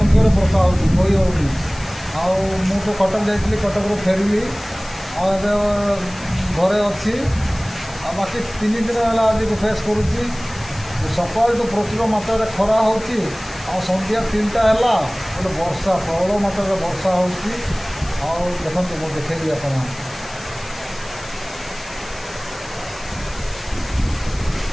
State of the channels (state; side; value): noise; left; hiss, 18 dB below the sound